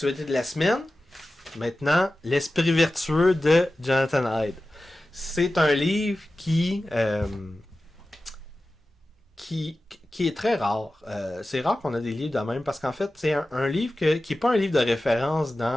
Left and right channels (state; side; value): normal; both; correlation 0.95